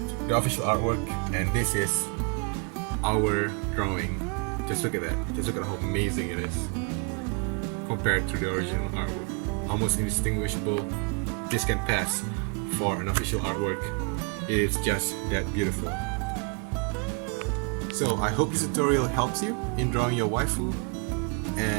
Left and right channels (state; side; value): quieter; left; 34.9 dB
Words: the official artwork, and this is our drawing. Just look at that. Just look at how amazing it is compared to the original artwork. Almost indistinguishable. This can pass for an official artwork. It is just that beautiful. So I hope this tutorial helps you in drawing your waifu,